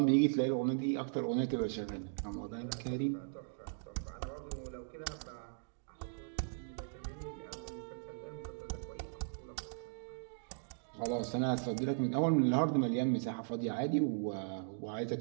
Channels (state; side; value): silent; left; digital silence